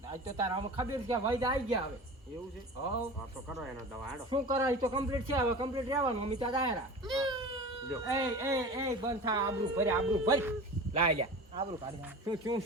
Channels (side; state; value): both; normal; correlation 0.34